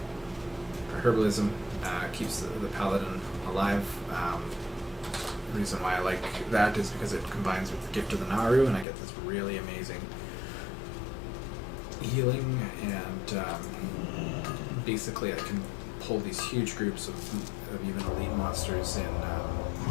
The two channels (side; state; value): right; drops out; at 8.8 s